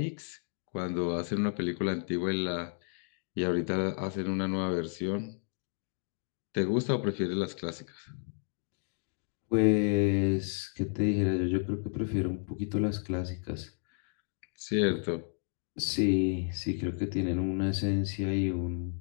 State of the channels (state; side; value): silent; right; 56 dB below the other